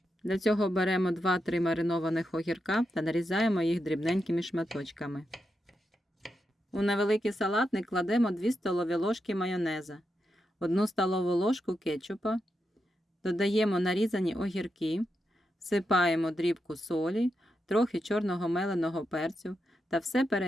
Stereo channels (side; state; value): both; normal; correlation 0.86